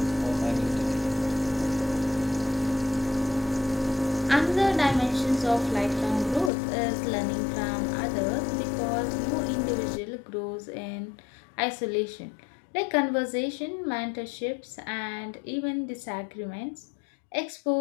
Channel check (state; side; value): drops out; right; at 6.5 s